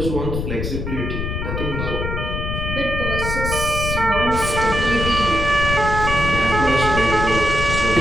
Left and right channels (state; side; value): noise; left; rumble, 3 dB below the sound